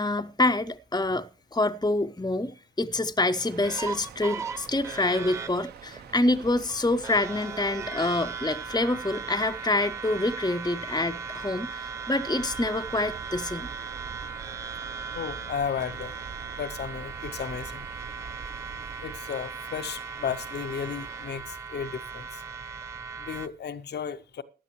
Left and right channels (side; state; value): both; normal; correlation 0.43